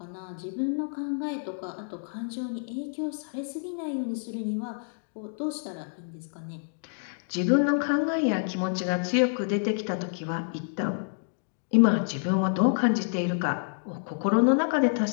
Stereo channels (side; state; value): right; silent; digital silence